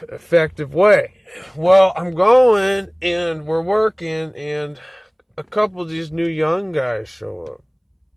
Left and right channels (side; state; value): both; identical; correlation 1.00